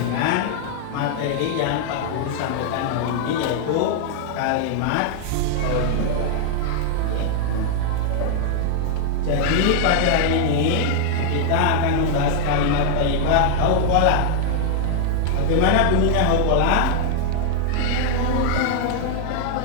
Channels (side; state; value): both; different; correlation 0.00